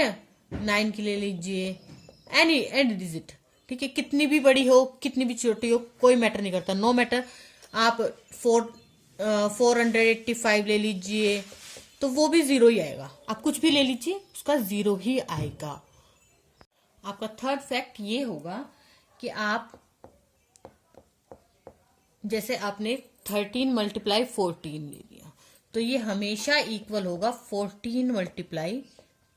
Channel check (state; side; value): identical; both; correlation 1.00